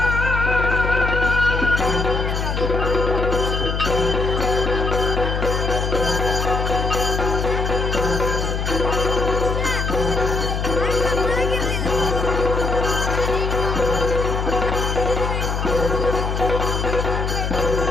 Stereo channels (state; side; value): noise; left; hum, 1 dB below the sound